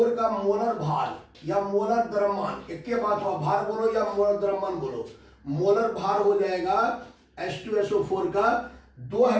का मोलर भार या मोलर द्रव्यमान, एक के बात हुआ, भार बोलो या मोलर द्रव्यमान बोलो। मोलर भार हो जाएगा H2SO4 का, दो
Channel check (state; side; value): identical; both; correlation 1.00